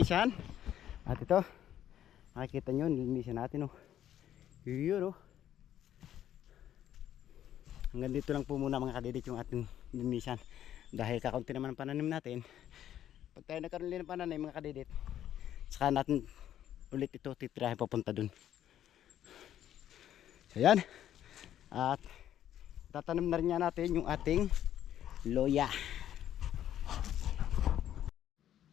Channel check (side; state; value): right; quieter; 11.2 dB